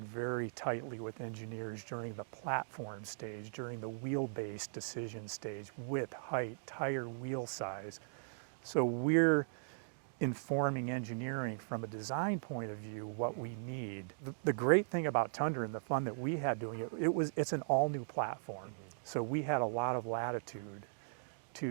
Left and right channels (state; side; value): silent; left; digital silence